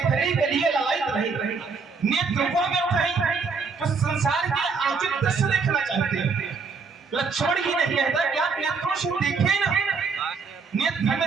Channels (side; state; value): left; quieter; 4.9 dB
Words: के लिए ललायित रहे। नेत्र वो व्यर्थ है जो संसार के अनुचित दृश्य देखना चाहते हैं। लक्ष्मण ही नहीं कहता कि आप नेत्रों से देखें ना, नेत्र